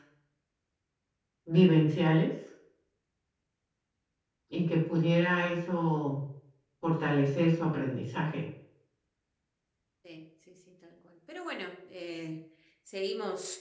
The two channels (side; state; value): both; identical; correlation 1.00